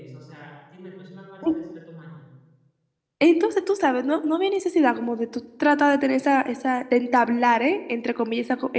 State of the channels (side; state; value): both; identical; correlation 1.00